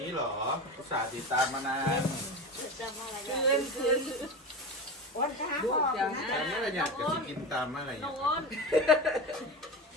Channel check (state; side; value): normal; both; correlation 0.25